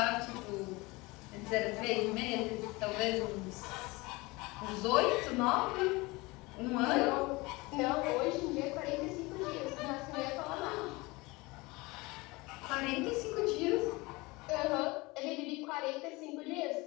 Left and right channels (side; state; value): right; quieter; 23.4 dB